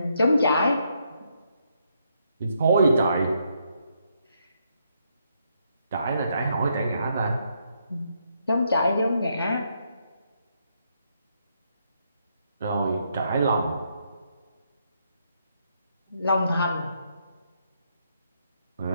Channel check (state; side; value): inverted; both; correlation -0.76